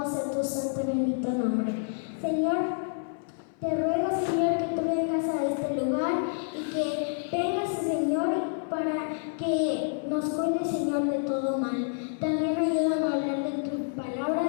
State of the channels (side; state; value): right; silent; 59 dB below the other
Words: sea tu santo y bendito nombre. Señor, te ruego, Señor, que tú vengas a este lugar y que vengas, Señor, para que nos cuides, Señor, de todo mal. También ayúdame a hablar de tu